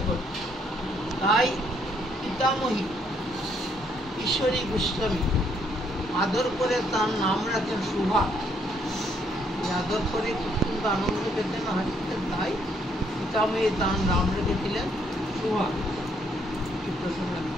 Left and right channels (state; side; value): normal; both; correlation 0.70